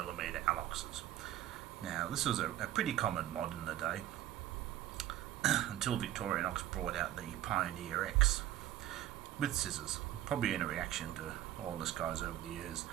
Aloxes. Now this was a pretty common mod in the day until Victorinox brought out the Pioneer X with scissors, probably in a reaction to all this guys over the years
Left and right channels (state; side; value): quieter; left; 13.1 dB